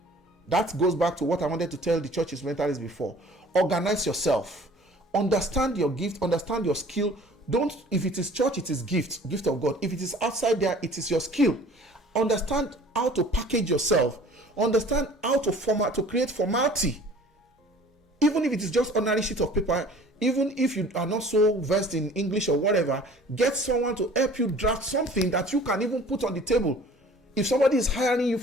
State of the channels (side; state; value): both; normal; correlation 0.49